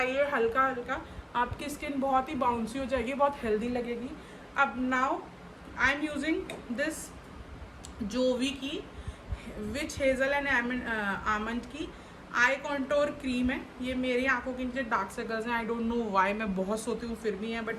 हल्का हल्का, आपकी स्किन बहुत ही बाउंसी हो जाएगी, बहुत हेल्दी लगेगी। अब now I am using this Jovees की विच हेज़ल एंड आमंड की आई कॉन्टोर क्रीम है। ये मेरी आंखों के नीचे डार्क सर्कल्स हैं, आई डोंट नो वाई, मैं बहुत सोती हूँ फिर भी है,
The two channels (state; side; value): identical; both; correlation 1.00